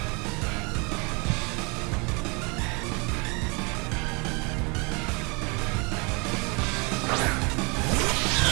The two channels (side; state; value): left; quieter; 30.7 dB